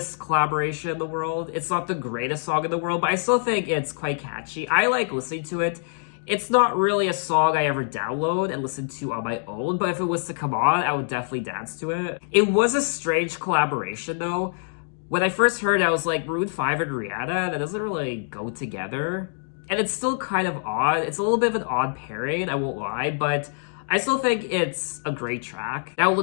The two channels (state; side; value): silent; right; digital silence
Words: collaboration in the world. It's not the greatest song in the world, but I still think it's quite catchy. I like listening to it. It's not really a song I ever download and listen to on my own, but if it was to come on, I would definitely dance to it. It was a strange collaboration, though. When I first heard it, I was like, Maroon 5 and Rihanna, that doesn't really go together. And it's still kind of odd. It's a little bit of an odd pairing, I won't lie, but I still think it's a great track. Now, it